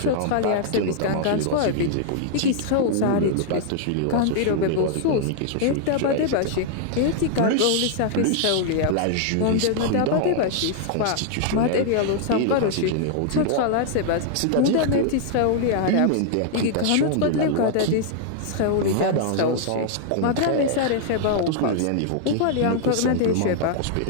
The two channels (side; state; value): both; different; correlation -0.01